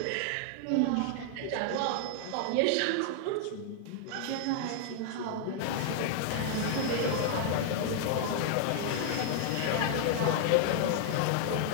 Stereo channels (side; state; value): both; different; correlation 0.00